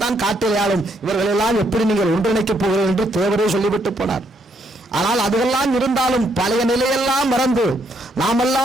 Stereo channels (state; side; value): normal; both; correlation 0.73